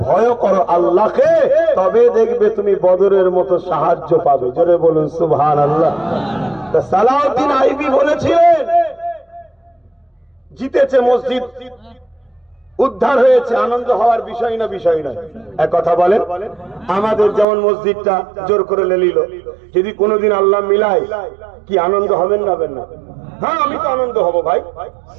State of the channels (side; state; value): left; drops out; at 17.4 s